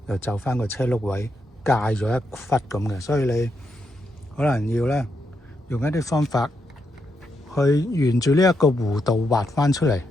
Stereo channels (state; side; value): normal; both; correlation 0.81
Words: 又就翻個車轆位界咗一忽咁嘅，所以你可能要咧用一啲方法去沿住呢一個弧度畫翻出嚟。